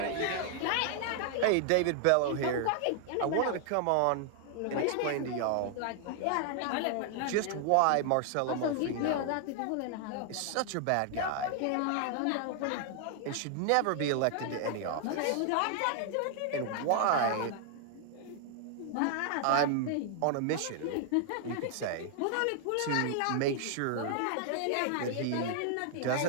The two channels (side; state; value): both; different; correlation 0.00